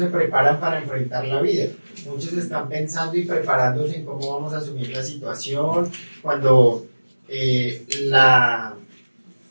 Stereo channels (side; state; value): both; inverted; correlation -1.00